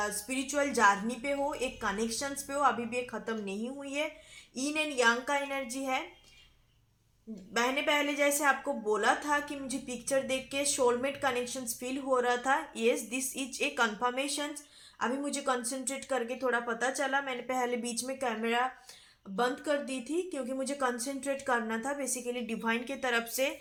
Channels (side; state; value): both; identical; correlation 1.00